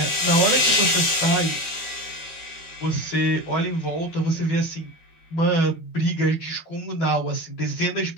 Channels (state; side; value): late; right; 13 ms